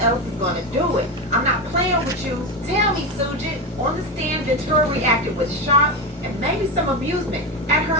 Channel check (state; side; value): normal; both; correlation 0.16